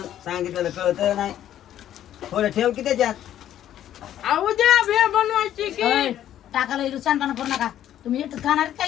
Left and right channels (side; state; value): right; quieter; 11.4 dB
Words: सांगितलेलं कळत नाही थोडं ठेव की त्याच्यात उद्या भेळ बनवायची की टाकायला इथं सांगताना करू नका तुम्ही येत खाणार